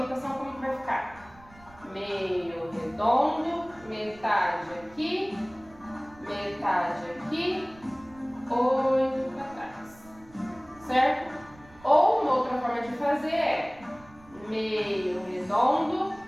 como que vai ficar? Meio redondo, metade aqui, 8 para trás, certo? Ou uma outra forma de fazer é meio redondo,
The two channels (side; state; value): right; noise; rumble, 24 dB below the sound